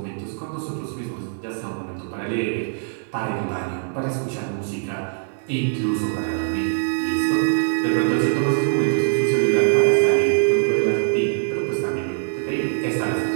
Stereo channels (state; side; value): silent; left; 64 dB below the other